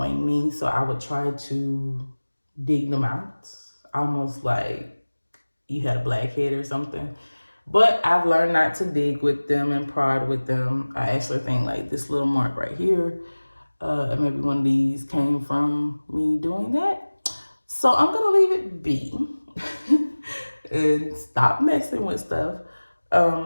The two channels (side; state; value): both; inverted; correlation -1.00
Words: me. So I would try to dig them out, almost like you had a blackhead or something. But I've learned not to dig with them and prod with them. I actually think like this little mark right here, and maybe one of these came from me doing that. So I'm gonna leave it be and stop messing with stuff.